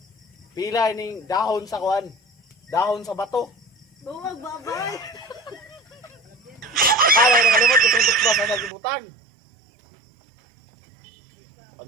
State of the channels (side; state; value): left; drops out; at 8.7 s